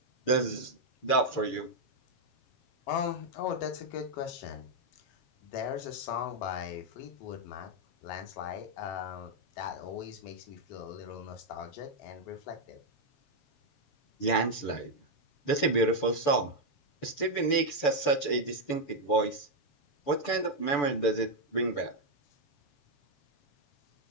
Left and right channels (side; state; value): right; late; 6.9 ms